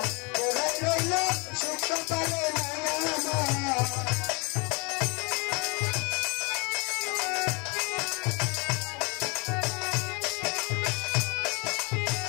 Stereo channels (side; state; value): right; quieter; 30.2 dB